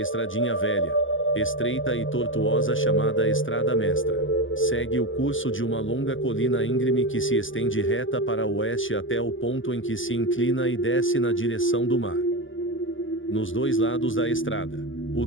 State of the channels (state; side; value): late; right; 0.57 ms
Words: velha, estreita e tortuosa chamada Estrada Mestra, segue o curso de uma longa colina íngreme que se estende reta para o oeste até o ponto em que se inclina e desce na direção do mar. Nos dois lados da estrada, o